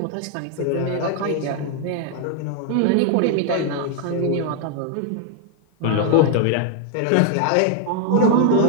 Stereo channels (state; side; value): different; both; correlation 0.00